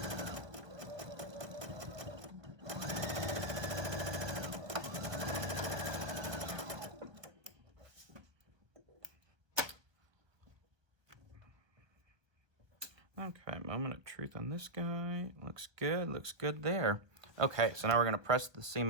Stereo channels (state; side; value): late; left; 1.2 ms